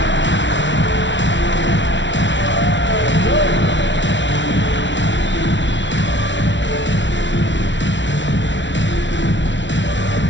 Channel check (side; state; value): right; late; 0.54 ms